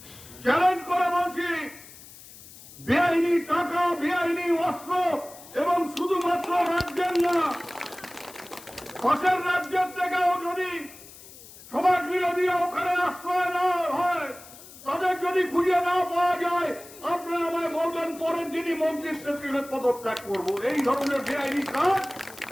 চ্যালেঞ্জ করে বলছি, বেআইনি টাকা, বেআইনি অস্ত্র এবং শুধুমাত্র রাজ্যের না, পাশের রাজ্যের থেকেও যদি সমাজ বিরোধীরা ওখানে আশ্রয় না হয়, তাদের যদি খুঁজে না পাওয়া যায়, আপনারা আমায় বলবেন, পরের দিনই মন্ত্রীর থেকে পদত্যাগ করবো। এই ধরনের বেআইনি কাজ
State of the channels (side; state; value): left; noise; hiss, 19 dB below the sound